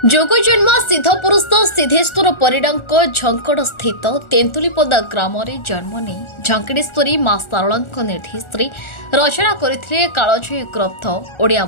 जोगजन्म सिद्धपुरुष सिद्धेश्वर परिडांक झंकड़ स्थित तेंतुलीपदा ग्राम जन्म नहीं झंकड़ेश्वरी मां शारला निर्देश रचना करथिले कालजयी ग्रंथ ओडिया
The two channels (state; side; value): late; right; 1.4 ms